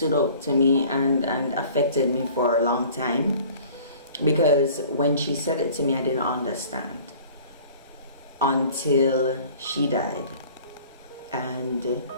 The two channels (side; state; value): both; inverted; correlation -0.49